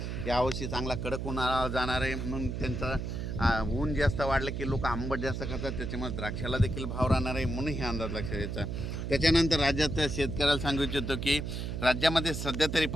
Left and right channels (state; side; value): noise; right; hum, 4 dB below the sound